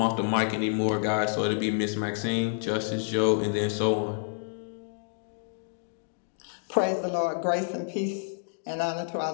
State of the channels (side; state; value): right; silent; digital silence